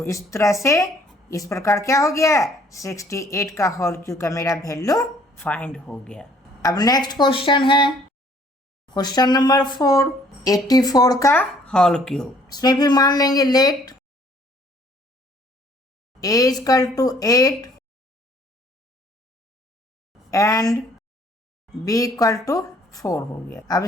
इस तरह से इस प्रकार क्या हो गया 68 का होल क्यूब का मेरा वैल्यू फाइंड हो गया। अब नेक्स्ट क्वेश्चन है क्वेश्चन नंबर 4, 84 का होल क्यूब। इसमें भी मान लेंगे let a equal to 8 and b equal to 4 हो गया। अब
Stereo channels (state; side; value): normal; both; correlation 0.60